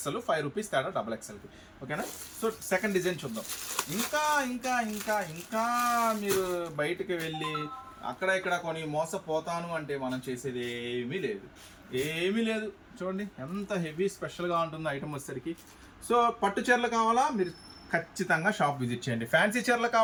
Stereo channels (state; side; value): identical; both; correlation 1.00